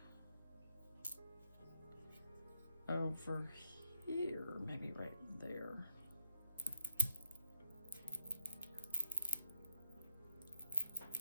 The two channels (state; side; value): inverted; both; correlation -0.71